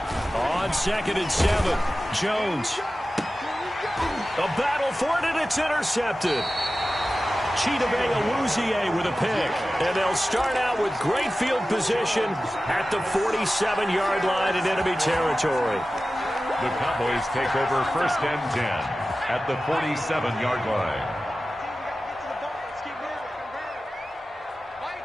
On 2nd and 7, Jones. A battle for it, and it's intercepted. Chidobe Awuzie with a pick. And they'll start out with great field position at the 47-yard line in enemy territory. The Cowboys take over 1st and 10 at the 47-yard line.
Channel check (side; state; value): both; normal; correlation 0.95